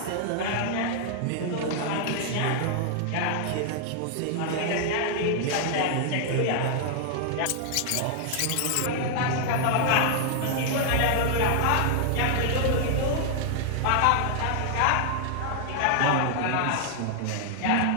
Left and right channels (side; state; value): both; different; correlation 0.00